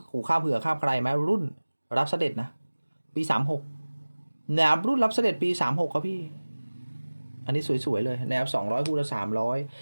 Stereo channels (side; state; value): both; inverted; correlation -1.00